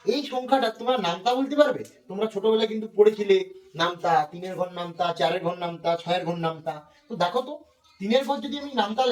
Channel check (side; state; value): both; identical; correlation 1.00